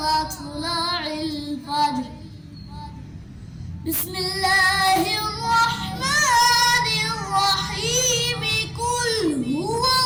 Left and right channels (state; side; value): identical; both; correlation 1.00